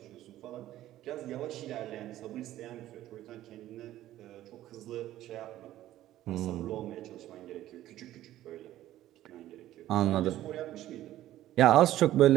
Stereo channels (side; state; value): left; quieter; 13.9 dB